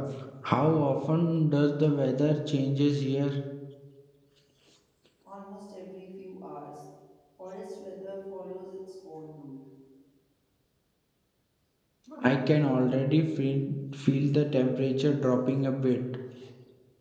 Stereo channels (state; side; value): identical; both; correlation 1.00